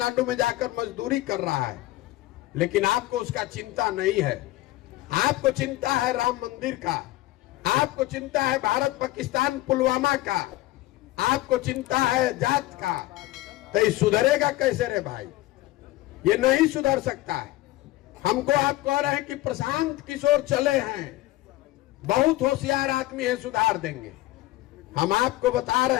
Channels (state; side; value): quieter; right; 17.4 dB